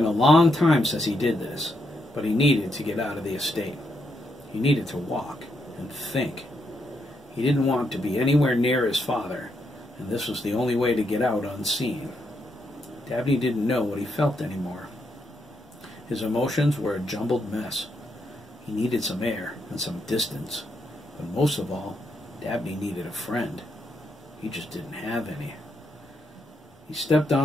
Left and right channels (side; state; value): both; normal; correlation 0.80